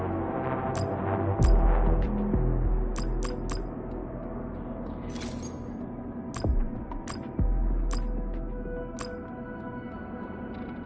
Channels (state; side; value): identical; both; correlation 1.00